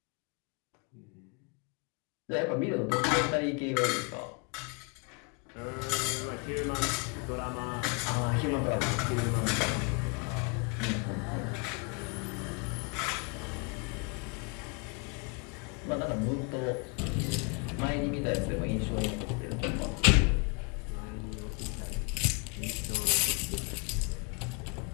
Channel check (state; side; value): quieter; right; 32.4 dB